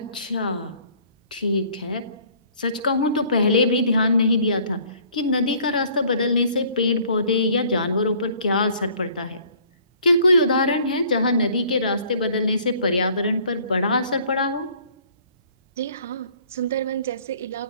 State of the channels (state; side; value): inverted; both; correlation -0.57